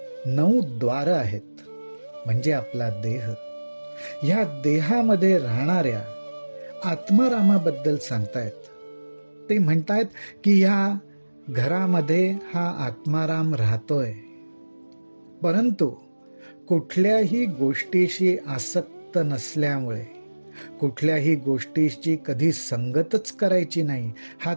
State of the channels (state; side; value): inverted; both; correlation -1.00